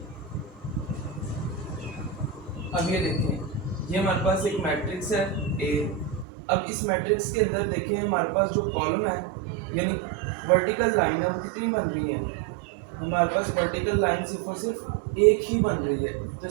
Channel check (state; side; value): drops out; left; at 6.2 s